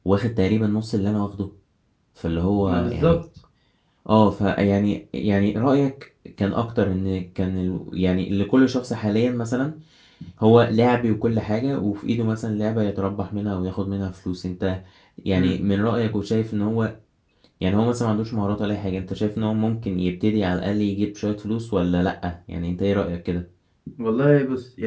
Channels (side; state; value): both; identical; correlation 1.00